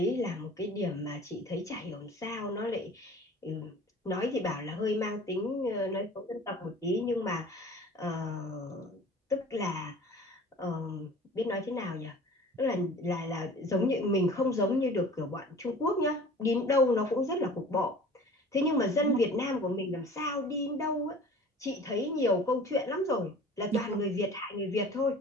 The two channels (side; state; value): both; normal; correlation 0.44